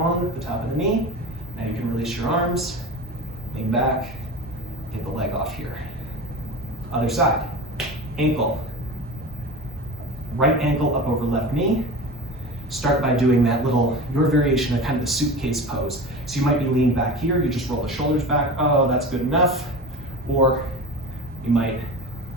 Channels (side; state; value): both; normal; correlation 0.31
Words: the top of the knee. Now you can release your arms, lean back, get the leg off here. Other side. Ankle. Right ankle up over left knee. Start by doing that little, your variation of kind of the suitcase pose. So you might be leaned back here, you just roll the shoulders back. Oh, that's good enough. Or you might